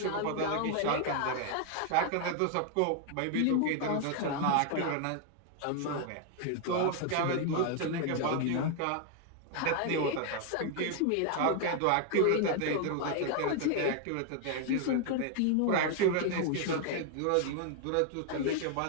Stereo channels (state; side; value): different; both; correlation 0.00